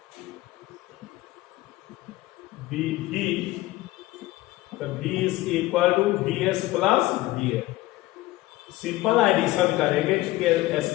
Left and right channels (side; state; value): right; quieter; 17.9 dB